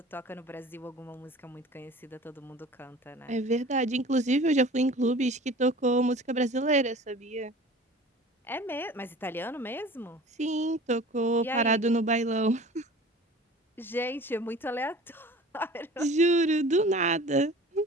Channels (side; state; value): both; normal; correlation 0.42